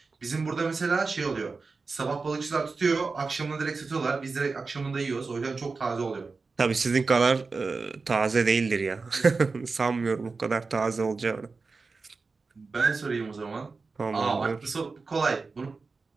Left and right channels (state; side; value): quieter; left; 4.2 dB